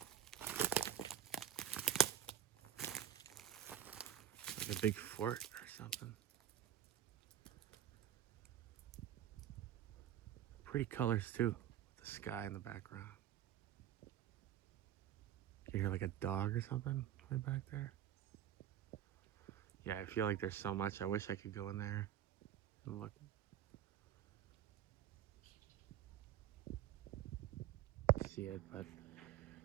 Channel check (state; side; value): quieter; left; 10.8 dB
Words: Like a big fort or something. Pretty colors too, with the sky in the background. You hear like a dog or something right back there. Yeah, I feel like there's so much. I wish I could go in there and look. See it, but